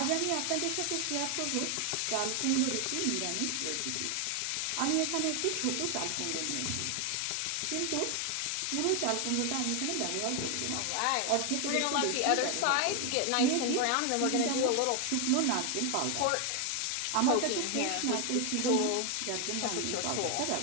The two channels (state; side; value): different; both; correlation 0.00